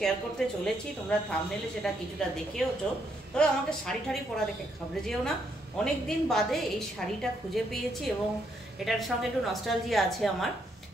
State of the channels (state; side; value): normal; both; correlation 0.75